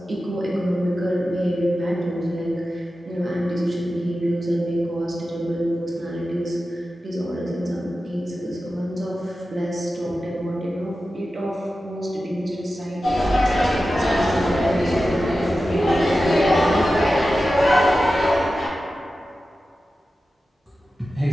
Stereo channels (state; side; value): normal; both; correlation 0.93